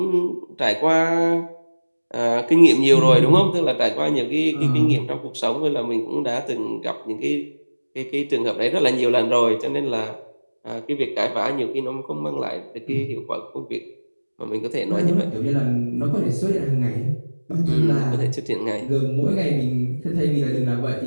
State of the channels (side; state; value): both; inverted; correlation -1.00